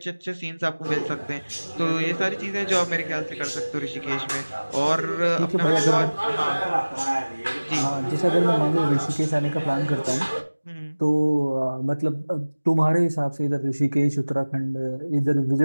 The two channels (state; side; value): inverted; both; correlation -1.00